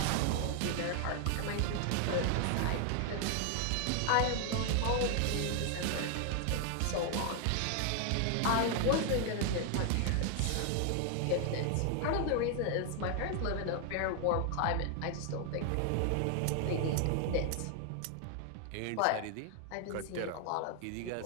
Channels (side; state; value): both; different; correlation 0.00